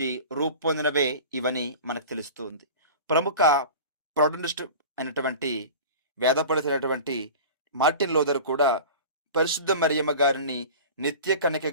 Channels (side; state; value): both; inverted; correlation -0.36